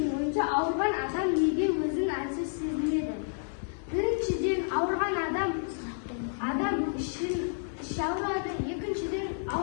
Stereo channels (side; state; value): right; silent; 58 dB below the other